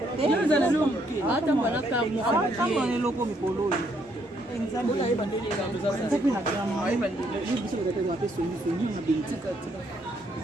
yo za lo hata mbona kama kama ne loko mikolo nzambe ona yeba ndenge ngambo za sasa kuna kama yeba ndenge ni biso kwa kwa peso ni ni na bintika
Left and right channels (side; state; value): both; normal; correlation 0.71